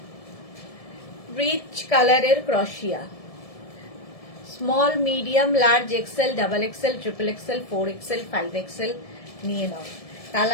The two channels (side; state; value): right; late; 1.7 ms